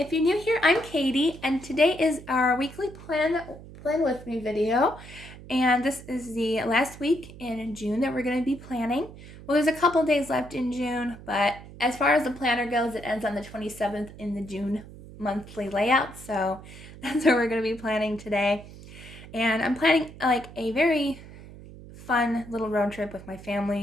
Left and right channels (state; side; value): noise; right; hum, 17 dB below the sound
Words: you're new here, I'm Katie, and today is our weekly plan with me video. And this is the last week in June that we're going to be planning. Well, there's a couple days left in June, but as far as the planner goes, it ends on the 27th in the June monthly layout. So that's what we're going to be planning today. And I'm planning like a very fun little road trip with my